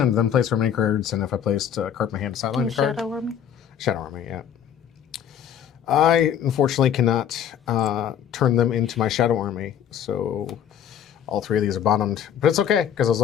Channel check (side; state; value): right; quieter; 9.2 dB